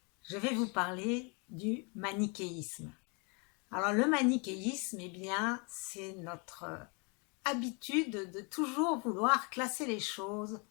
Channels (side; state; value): right; quieter; 33.1 dB